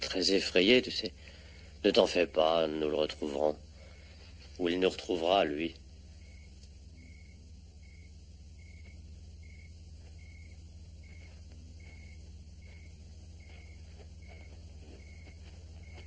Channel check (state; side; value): identical; both; correlation 1.00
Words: effrayé, tu sais. Ne t'en fais pas, nous le retrouverons. Ou il nous retrouvera, lui.